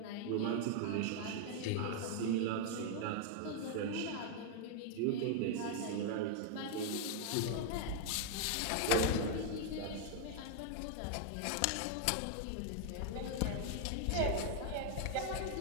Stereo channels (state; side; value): different; both; correlation 0.00